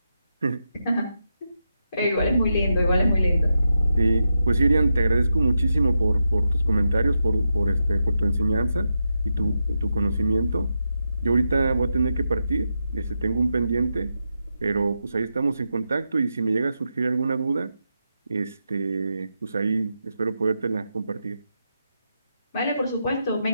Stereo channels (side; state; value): both; inverted; correlation -0.86